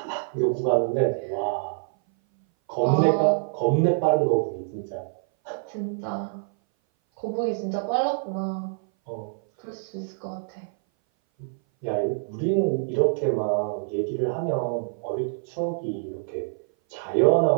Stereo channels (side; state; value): left; silent; 58 dB below the other